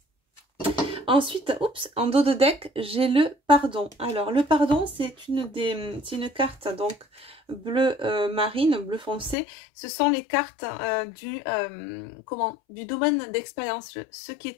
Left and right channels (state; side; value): drops out; right; at 9.3 s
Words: Ensuite, oups, en dos de deck, j'ai le pardon. Alors, le pardon, c'est une carte donc bleu marine, bleu foncé. Ce sont les cartes du domaine d'expérience, ce qui